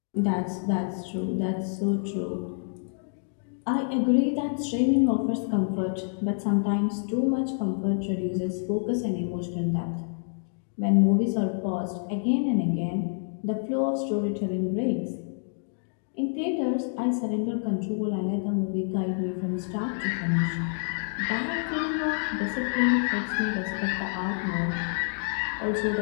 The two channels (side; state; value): right; silent; digital silence